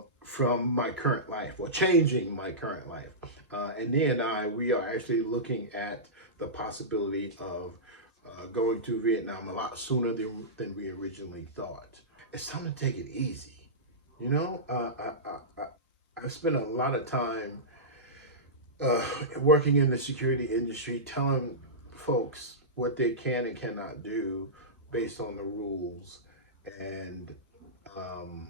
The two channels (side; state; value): both; normal; correlation -0.16